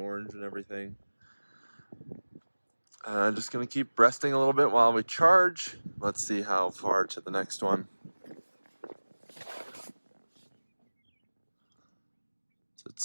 and everything. Just gonna keep resting a little bit while we charge. Let's see how far to the next one. So it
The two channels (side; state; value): both; inverted; correlation -1.00